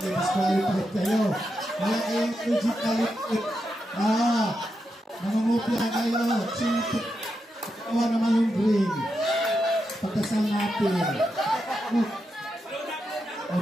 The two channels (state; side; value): normal; both; correlation 0.86